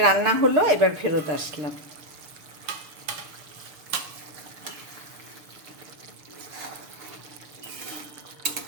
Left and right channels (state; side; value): late; left; 6.7 ms